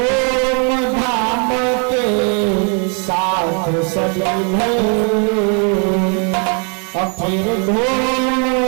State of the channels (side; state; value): left; quieter; 38.3 dB